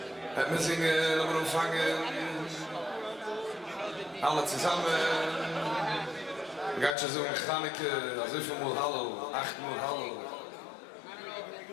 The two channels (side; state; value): right; drops out; at 7.0 s